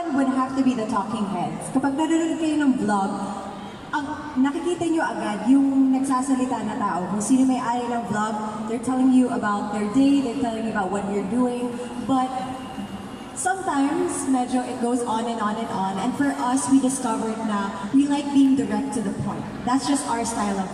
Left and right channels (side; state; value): both; identical; correlation 1.00